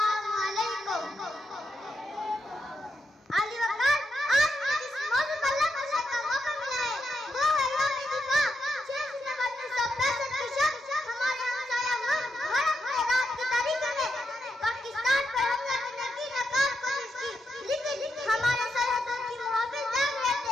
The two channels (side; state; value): both; normal; correlation 0.84